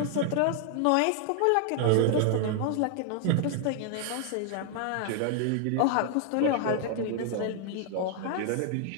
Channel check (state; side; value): different; both; correlation 0.00